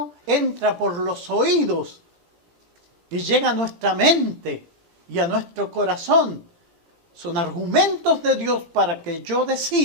entra por los oídos y llega a nuestra mente y a nuestro corazón. Son argumentos de Dios para que yo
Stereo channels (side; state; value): left; late; 17 ms